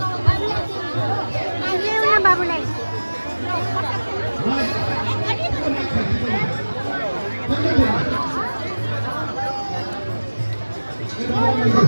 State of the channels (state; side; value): inverted; both; correlation -1.00